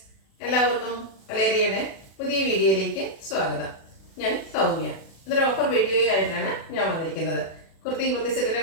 എല്ലാവർക്കും കലേരിയയുടെ പുതിയ വീഡിയോയിലേക്ക് സ്വാഗതം. ഞാൻ സൗമ്യ. ഇതൊരു ഓഫർ വീഡിയോ ആയിട്ടാണ് ഞാൻ വന്നിരിക്കുന്നത്. കുർത്തി സെറ്റിന്റെ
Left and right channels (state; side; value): late; right; 36 ms